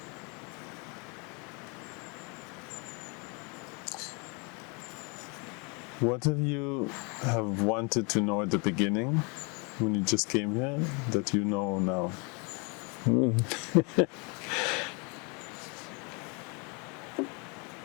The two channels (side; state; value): right; quieter; 32.3 dB